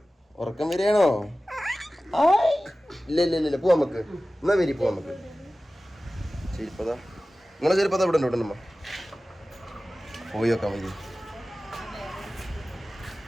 ഉറക്കം വരികയാണോ? ഇല്ല പോവാ നമുക്ക്. എന്നാ വരി പോവാ നമുക്ക്. ചെരുപ്പതാ നിങ്ങളെ ചെരുപ്പതാ ഇവിടെ ഉണ്ടോ നമ്മ? പോയി നോക്കാം വരി.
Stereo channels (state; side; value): normal; both; correlation 0.96